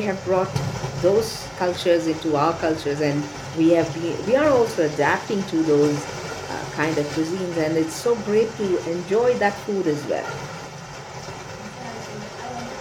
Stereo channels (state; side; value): identical; both; correlation 1.00